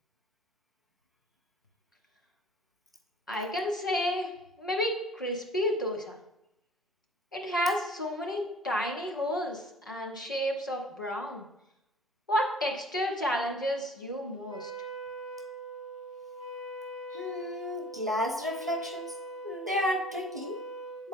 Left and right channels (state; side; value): normal; both; correlation 0.50